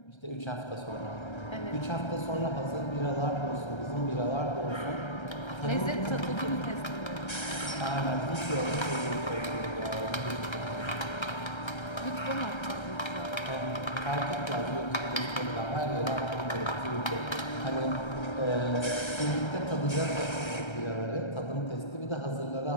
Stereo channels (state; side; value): late; right; 1.3 ms